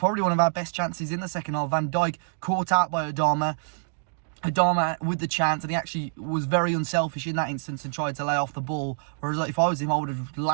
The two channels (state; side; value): silent; left; digital silence